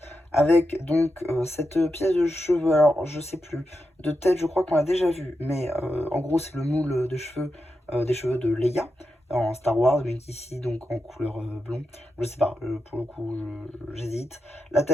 avec donc cette pièce de cheveux. Alors, je sais plus. De tête, je crois qu'on l'a déjà vu. Mais en gros, c'est le moule de cheveux, des cheveux de Leia en Star Wars. Mais ici, donc en couleur blond. Je sais pas. Pour le coup, j'hésite. La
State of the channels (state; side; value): normal; both; correlation 0.88